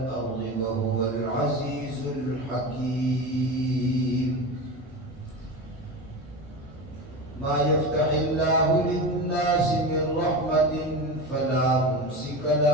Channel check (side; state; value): both; normal; correlation 0.25